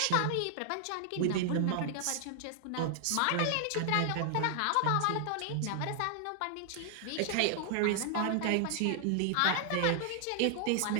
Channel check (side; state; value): both; different; correlation 0.00